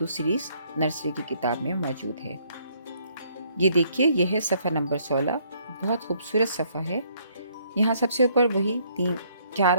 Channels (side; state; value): both; inverted; correlation -0.67